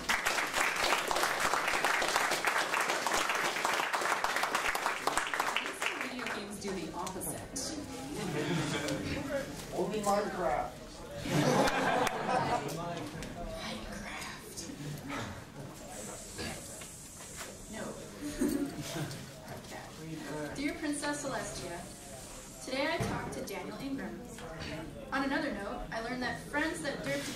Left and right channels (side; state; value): both; identical; correlation 1.00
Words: Video games do the opposite. Only Minecraft. Minecraft. No. Okay. Dear Princess Celestia, today I talked to Daniel Ingram. On another note, I learned that friends that derp